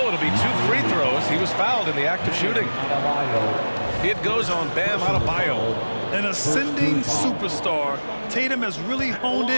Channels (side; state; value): both; inverted; correlation -1.00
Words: it'll be 2 free throws. He was fouled in the act of shooting. It goes on Bam Adebayo. An ascending superstar, Tatum has really honed